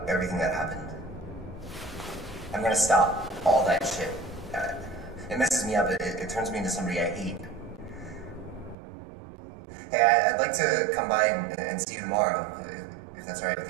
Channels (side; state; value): left; drops out; at 8.8 s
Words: everything that happened. I'm gonna stop all that shit. It messes me up. It turns me into somebody I hate. Hey, I'd like to come by and see you tomorrow, if that's all right